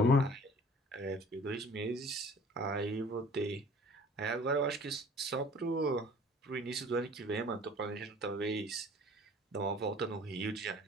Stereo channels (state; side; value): normal; both; correlation 0.49